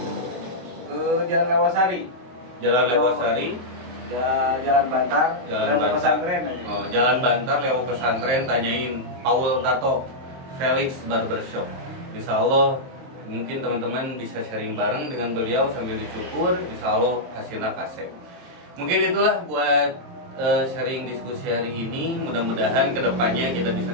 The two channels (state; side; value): late; left; 24 ms